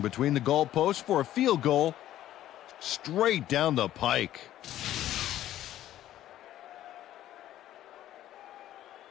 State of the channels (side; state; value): right; quieter; 13.0 dB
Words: the goalposts for a field goal straight down the pike.